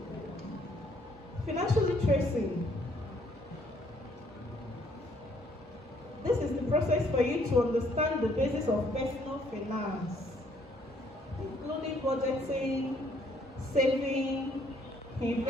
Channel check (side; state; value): both; normal; correlation 0.66